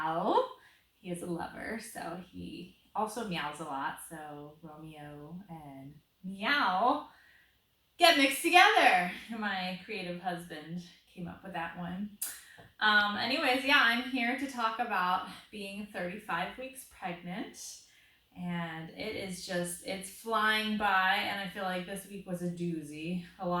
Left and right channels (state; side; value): identical; both; correlation 1.00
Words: He is a lover, so he also meows a lot. So Romeo and Meow get mixed together. My creative husband came up with that one. Anyways, yeah, I'm here to talk about being 35 weeks pregnant. And it's flying by. And I feel like this week was a doozy. A